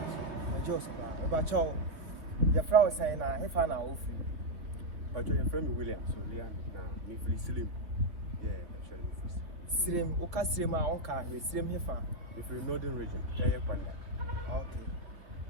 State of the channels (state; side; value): late; left; 3.4 ms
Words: The Joseph ba chow. The flower say na he fa na ofi. But your friend William, so Leon na me free slim. Yeah, actually me free. Slim o ka slim a on ka we slim he fa. Me free northern region, Eye Kwanda. Okay.